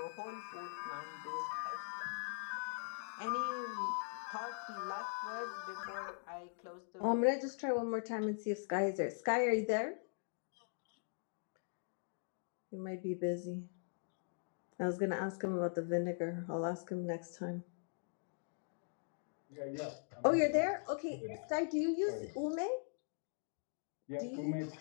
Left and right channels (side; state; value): right; silent; digital silence